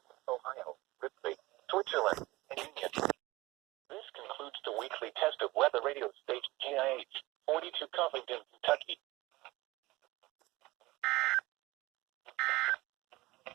Ohio, Ripley, Switzerland, and Union. This concludes the weekly test of weather radio station GIH 42 Covington, Kentucky.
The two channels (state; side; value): quieter; left; 20.2 dB